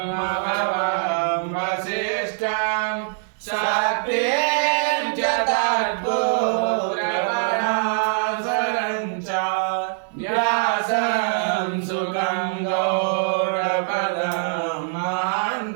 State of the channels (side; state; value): left; silent; digital silence